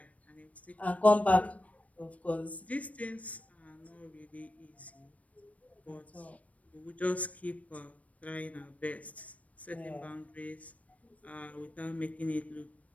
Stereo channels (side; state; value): right; late; 0.067 ms